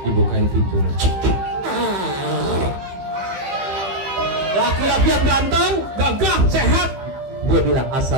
pintu. Laki-laki yang ganteng, gagah, sehat. Dia bilang,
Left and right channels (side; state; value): left; late; 15 ms